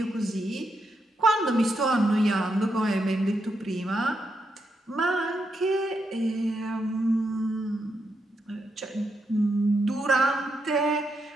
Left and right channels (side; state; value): both; normal; correlation 0.82